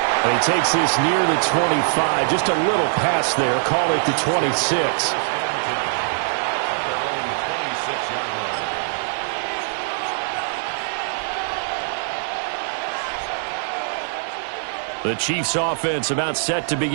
And he takes this near the 25. Just a little pass there. Call it the 26. The Chiefs offense about set to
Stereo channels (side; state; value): left; silent; 56 dB below the other